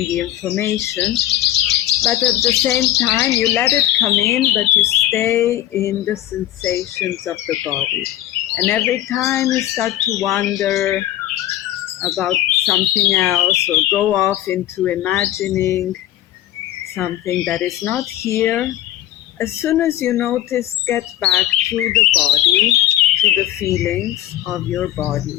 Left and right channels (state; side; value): quieter; right; 13.5 dB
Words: the information. But at the same time, you let it come in, but you stay in the sensations of the body. And every time you start to wonder about something else or go off into imagining something that is not here, as soon as you notice, get back to the body, to the feelings of your